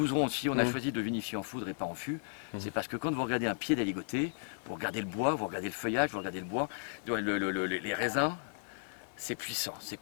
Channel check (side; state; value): right; silent; 55 dB below the other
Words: aussi. On a choisi de vinifier en foudre et pas en fût. C'est parce que quand vous regardez un pied d'aligoté, vous regardez le bois, vous regardez le feuillage, vous regardez le bois, les raisins, c'est puissant, c'est